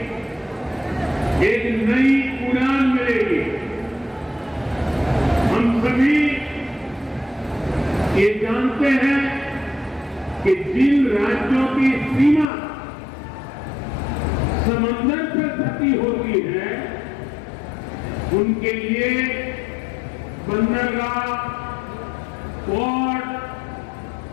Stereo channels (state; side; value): drops out; right; at 12.5 s